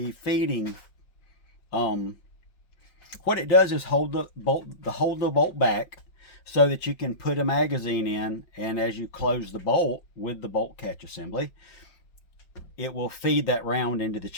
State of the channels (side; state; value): right; late; 5.4 ms